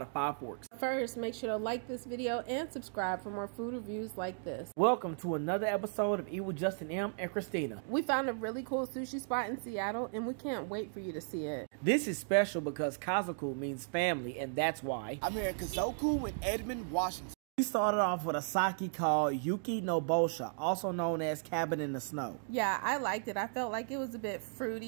5 forks. First, make sure to like this video and subscribe for more food reviews like this. Welcome to another episode of Eat with Justin M and Christina. We found a really cool sushi spot in Seattle and we can't wait for you to see it. This is special because Kazoku means family, and that's why I'm here at Kazoku in Edmond, Washington. we started off with a sake called Yuki no Bosha, also known as Cabin in the Snow. Yeah, I liked it. I felt like it was a bit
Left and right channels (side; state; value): left; silent; digital silence